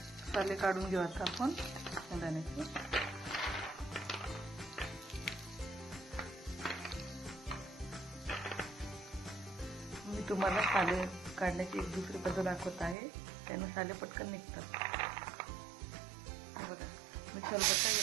साले काढून घेऊ आता आपण शेंगदाण्याचे। मी तुम्हाला साले काढण्याची एक दुसरी पद्धत दाखवत आहे, त्याने साले पटकन निघतात। बघा, मी खलबत्ता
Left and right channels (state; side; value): drops out; left; at 13.0 s